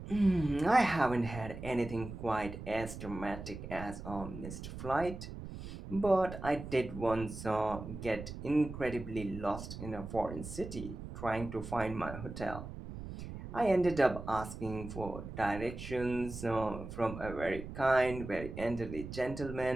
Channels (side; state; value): right; noise; rumble, 10 dB below the sound